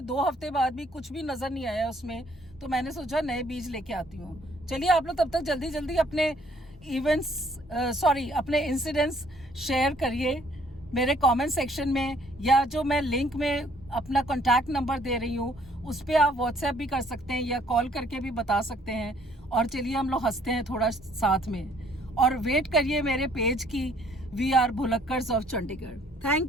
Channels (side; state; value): both; normal; correlation 0.62